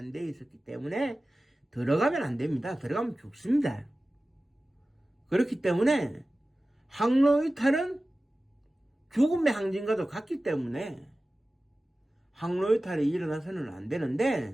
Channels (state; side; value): normal; both; correlation 0.96